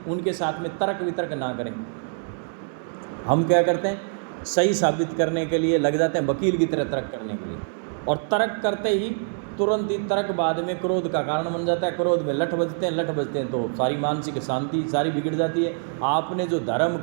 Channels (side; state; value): left; silent; 62 dB below the other